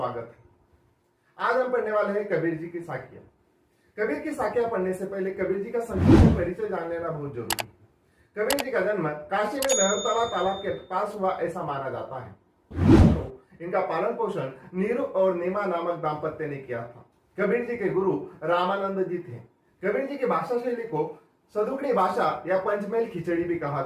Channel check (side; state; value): both; identical; correlation 1.00